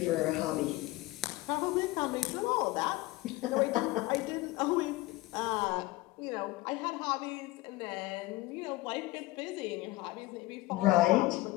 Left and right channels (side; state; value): right; quieter; 19.8 dB